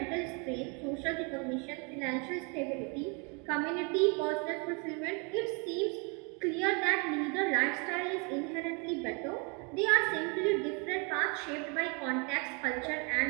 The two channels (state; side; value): quieter; left; 33.1 dB